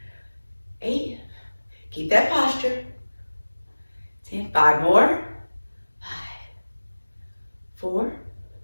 8. Keep that posture. 10. 5 more. 5, 4,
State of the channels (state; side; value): inverted; both; correlation -1.00